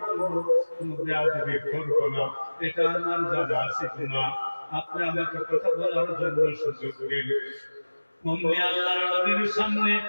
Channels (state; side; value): inverted; both; correlation -1.00